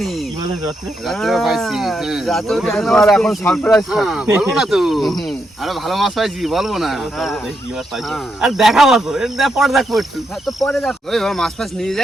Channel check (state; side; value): normal; both; correlation 0.81